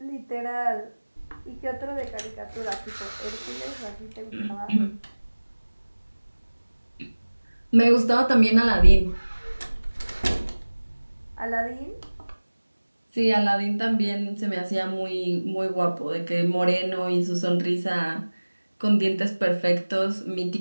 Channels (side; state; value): both; inverted; correlation -1.00